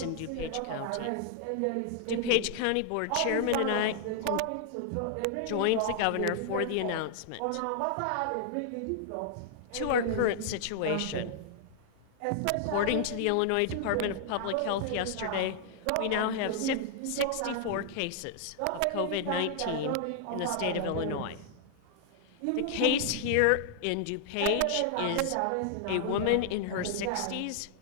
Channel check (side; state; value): both; different; correlation 0.00